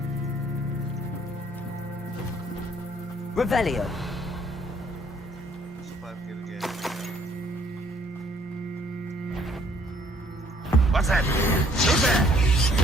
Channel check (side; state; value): both; normal; correlation 0.62